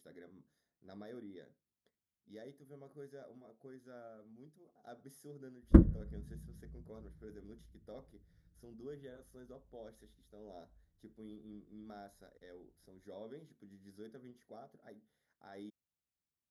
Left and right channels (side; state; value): both; identical; correlation 1.00